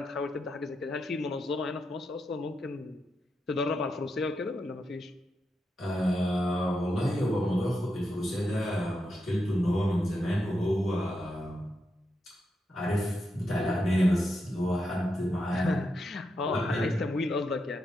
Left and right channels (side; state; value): both; normal; correlation 0.85